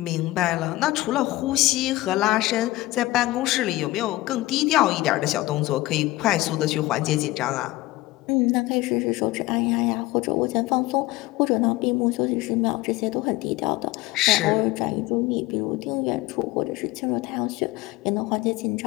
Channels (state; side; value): quieter; right; 18.5 dB